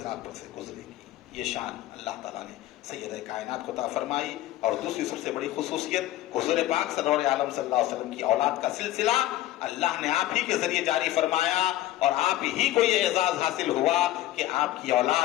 پر سے گزریں گی. یہ شان اللہ تعالیٰ نے سید کائنات کو عطا فرمائی. اور دوسری سب سے بڑی خصوصیت, حضور پاک سرور عالم صلی اللہ علیہ وسلم کی اولاد کا سلسلہ اللہ نے آپ ہی کے ذریعے جاری فرمایا, اور آپ ہی کو یہ اعزاز حاصل ہوا کہ آپ کی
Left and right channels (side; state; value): right; quieter; 14.9 dB